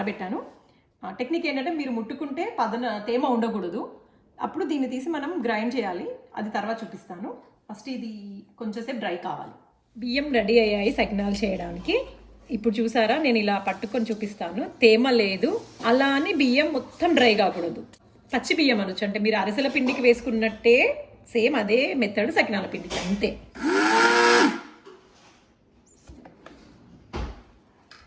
టెక్నిక్ ఏంటంటే మీరు ముట్టుకుంటే తేమ ఉండకూడదు. అప్పుడు దీన్ని తీసి మనం గ్రైండ్ చేయాలి, అది తర్వాత చూపిస్తాను. ఫస్ట్ ఇది కొంచెంసేపు డ్రై కావాలి. బియ్యం రెడీ అయ్యాయి సకినాలు చేయడానికి. ఇప్పుడు చూసారా, నేను ఇలా పట్టుకొని చూపిస్తాను. తేమ లేదు, అలా అని బియ్యం మొత్తం డ్రై కాకూడదు. పచ్చి బియ్యం అనొచ్చు, అంటే మీరు అరిసెల పిండికి వేసుకున్నట్టే సేమ్ అదే మెథడ్ సకినాల పిండికి, అంతే.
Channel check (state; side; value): identical; both; correlation 1.00